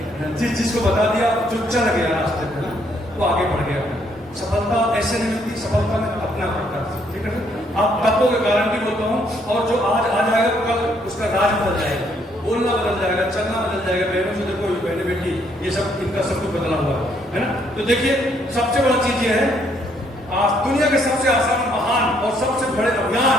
जिसको बता दिया जो चल गया रास्ते पे ना, वो आगे बढ़ गया। सफलता ऐसे नहीं मिलती, सफलता में अपना पड़ता है, ठीक है? आप तत्वों के गारंटी बोलता हूँ, और जो आज आ जाएगा कल उसका राज बदल जाएगा, बोलना बदल जाएगा, चलना बदल जाएगा। बहनों से देखो, बहने बेटी ये सब इनका सब कुछ बदला हुआ है ना। तो देखिए सबसे बड़ा चीज ये है, आज दुनिया के सबसे आसान, महान और सबसे बड़े अभियान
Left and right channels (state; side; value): normal; both; correlation 0.69